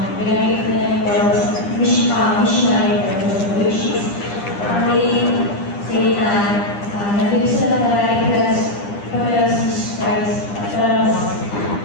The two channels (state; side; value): late; right; 9.9 ms